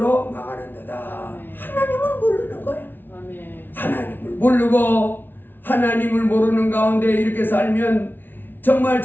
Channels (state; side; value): late; right; 0.097 ms